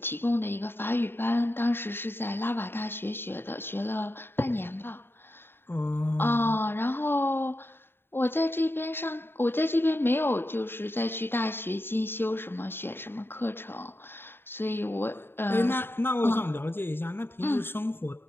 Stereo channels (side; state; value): right; late; 0.11 ms